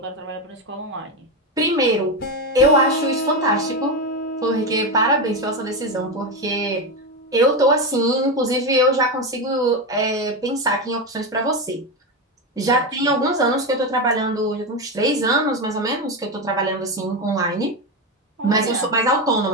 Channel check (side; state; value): both; normal; correlation 0.13